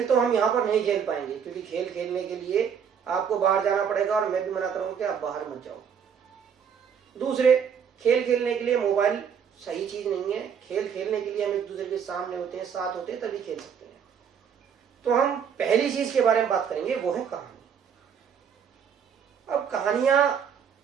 तो हम यहाँ पर नहीं खेल पाएंगे क्योंकि खेल खेलने के लिए आपको बाहर जाना पड़ेगा और मैं भी मना करूँगा कि आप बाहर मत जाओ। दूसरे, खेल खेलने के लिए मोबाइल सही चीज़ नहीं है। खेल खेलने के लिए हम एक दूसरे के सामने होते हैं, साथ होते हैं, तभी खेल सकते हैं। तो हम पहली चीज़ के बारे में बात करेंगे, वो है कहानी। अब कहानियाँ,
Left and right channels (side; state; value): left; quieter; 7.4 dB